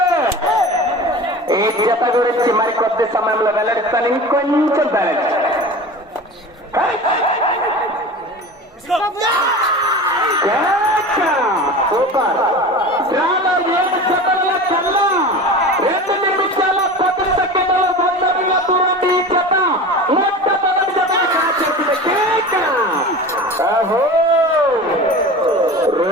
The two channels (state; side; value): normal; both; correlation 0.33